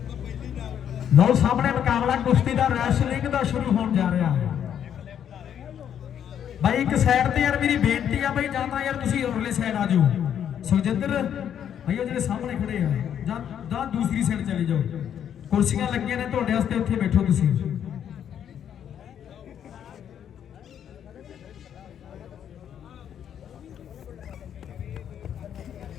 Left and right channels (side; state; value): right; quieter; 9.2 dB